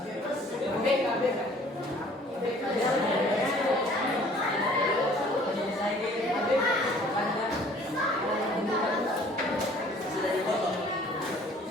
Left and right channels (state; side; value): normal; both; correlation 0.54